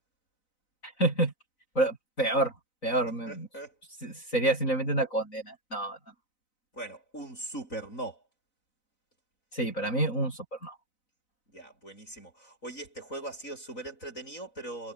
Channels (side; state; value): right; late; 4.0 ms